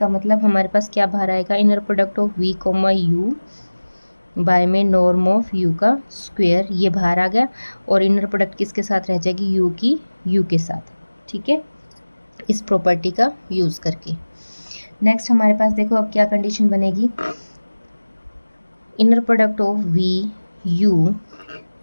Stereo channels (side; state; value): both; inverted; correlation -1.00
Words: मतलब हमारे पास क्या बाहर आएगा, inner product of V comma U by में नॉर्म ऑफ U का स्क्वायर, ये बाहर आ गया, और इनर प्रोडक्ट किसके साथ रह जाएगी, U की U के साथ, ठीक है, इस प्रॉपर्टी का यूज़ करके। नेक्स्ट हमारे पास देखो अब क्या कंडीशन बनेगी, inner product of V U